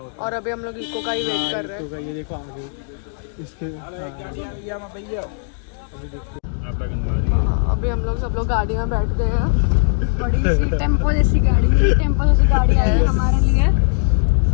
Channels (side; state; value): right; silent; digital silence